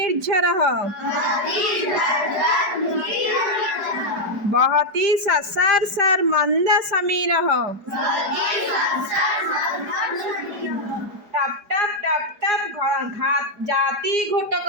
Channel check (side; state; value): left; late; 4.8 ms